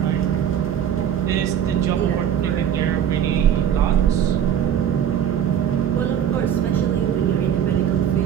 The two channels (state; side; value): quieter; left; 9.4 dB